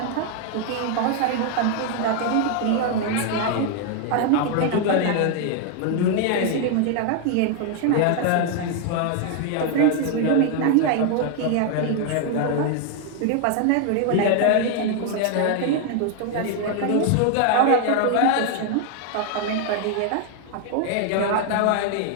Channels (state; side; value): different; both; correlation 0.00